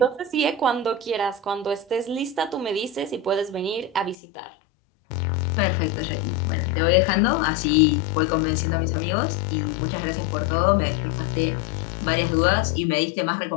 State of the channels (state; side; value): drops out; right; at 4.2 s